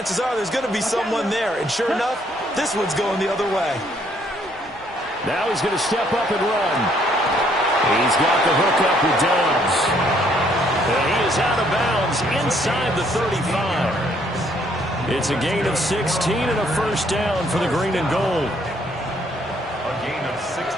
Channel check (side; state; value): right; noise; rumble, 25 dB below the sound